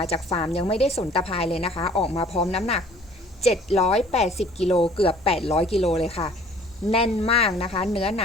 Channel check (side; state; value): both; normal; correlation 0.53